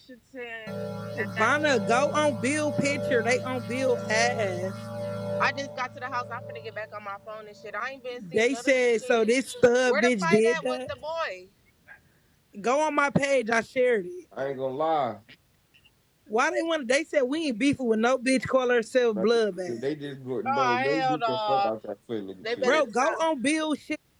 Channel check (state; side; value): identical; both; correlation 1.00